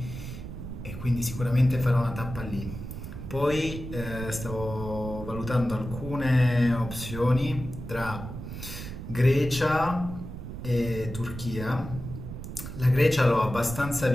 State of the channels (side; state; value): right; noise; rumble, 9 dB below the sound